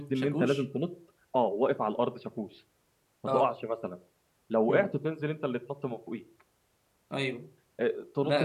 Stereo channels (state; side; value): identical; both; correlation 1.00